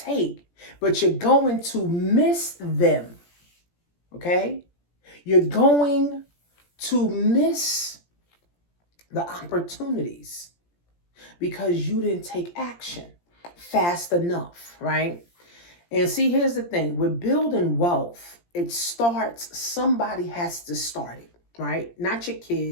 but you're going to miss them. Okay? You're going to miss the opportunities because you didn't take action fast enough, right? And see, here's the thing. With building wealth, it starts, somebody has to start it, right? Not your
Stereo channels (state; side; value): late; right; 17 ms